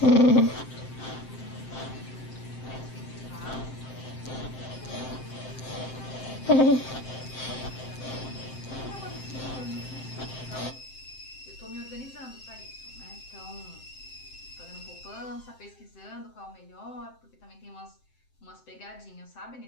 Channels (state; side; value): late; right; 7.7 ms